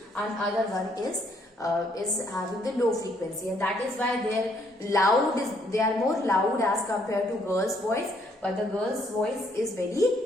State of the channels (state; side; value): normal; both; correlation 0.69